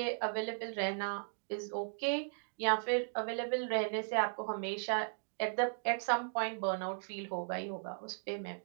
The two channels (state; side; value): silent; left; digital silence